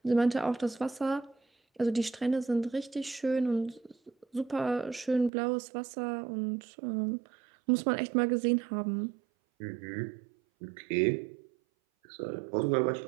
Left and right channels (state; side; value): drops out; left; at 5.3 s